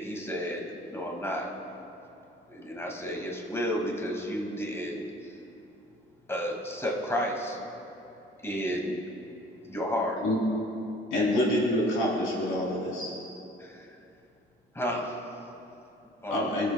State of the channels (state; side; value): normal; both; correlation 0.51